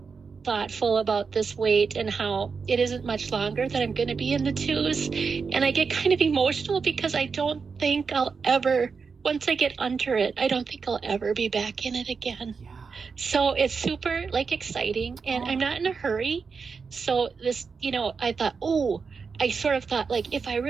thoughtful about this weight and how it isn't much longer that I'm going to be in the 2s. And I get kind of emotional because I don't think I'll ever, once I get under it, I don't think I'll ever be back in it again. Yeah. So it's super exciting and I'm not in a hurry. So this, I thought, I sort of thought if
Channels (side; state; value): left; quieter; 5.3 dB